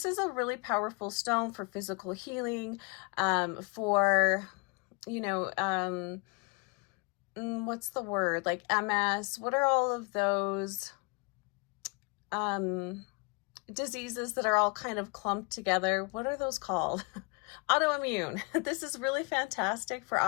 is a really powerful stone for physical healing, for, what's the word? Like MS. What are all of those diseases that are all kind of clumped together? What are those called? Autoimmune. This is really fantastic for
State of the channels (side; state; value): right; quieter; 31.4 dB